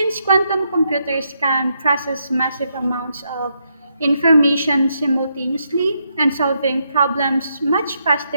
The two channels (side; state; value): both; inverted; correlation -0.79